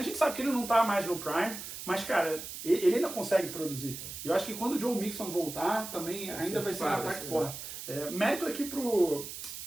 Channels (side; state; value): right; noise; hiss, 9 dB below the sound